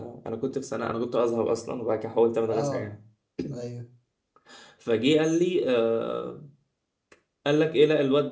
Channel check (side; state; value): both; identical; correlation 1.00